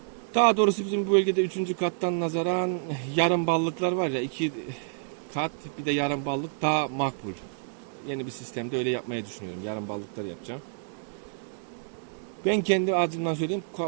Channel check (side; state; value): left; silent; digital silence